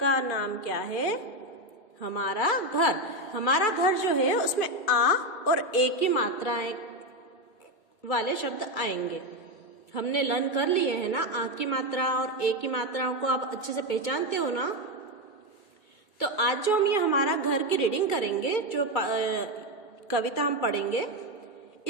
नाम क्या है? हमारा घर। हमारा घर जो है उसमें आ और ए की मात्राएं वाले शब्द आएंगे। हमने लर्न कर लिए हैं ना, आ की मात्रा और ए की मात्राओं को आप अच्छे से पहचानते हो ना। तो आज जो हम ये हमारा घर की रीडिंग करेंगे, जो कविता हम पढ़ेंगे,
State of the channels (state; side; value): late; right; 2.3 ms